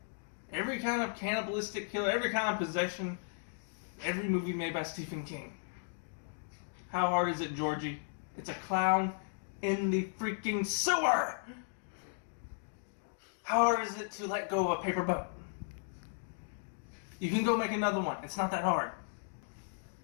every kind of cannibalistic killer, every kind of possession, every movie made by Stephen King. How hard is it, Georgie? It's a clown in the freaking sewer! How hard is it to let go of a paper boat? You can go make another one. It's not that hard.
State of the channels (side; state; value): right; silent; digital silence